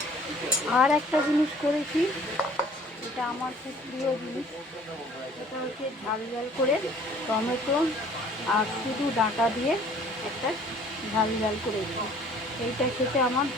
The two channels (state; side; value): normal; both; correlation 0.53